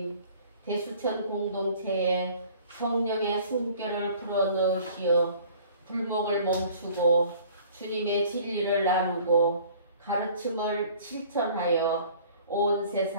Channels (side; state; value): both; inverted; correlation -0.51